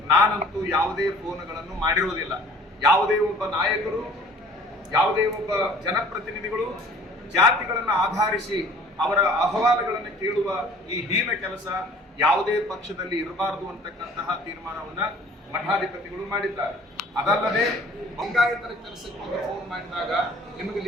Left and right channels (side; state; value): both; normal; correlation 0.51